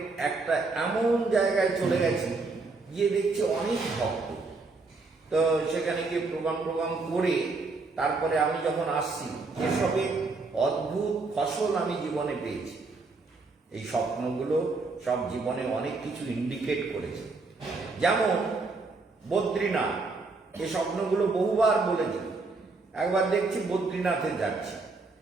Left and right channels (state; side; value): quieter; left; 3.8 dB